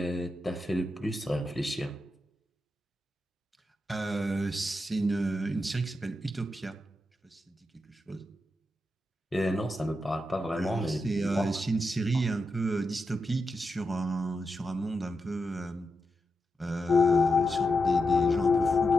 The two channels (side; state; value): both; normal; correlation 0.87